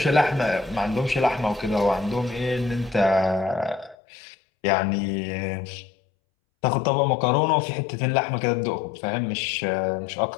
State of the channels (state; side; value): drops out; right; at 4.0 s